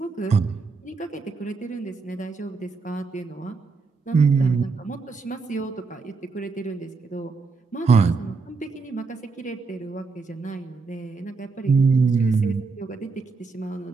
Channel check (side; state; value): left; quieter; 4.5 dB